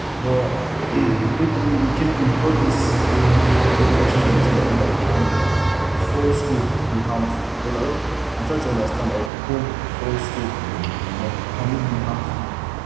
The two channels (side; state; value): left; drops out; at 9.3 s